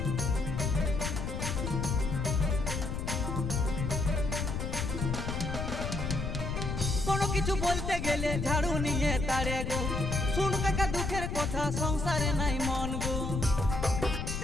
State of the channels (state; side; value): noise; left; rumble, 4 dB below the sound